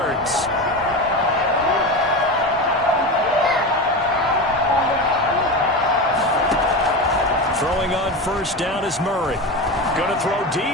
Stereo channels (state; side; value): normal; both; correlation 0.23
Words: Throwing on first down is Murray. Going to throw